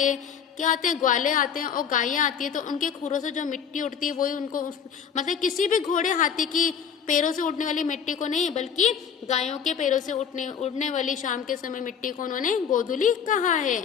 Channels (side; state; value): right; quieter; 7.4 dB